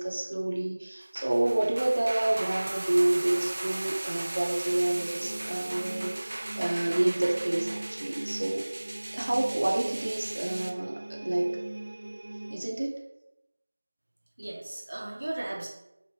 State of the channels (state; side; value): inverted; both; correlation -1.00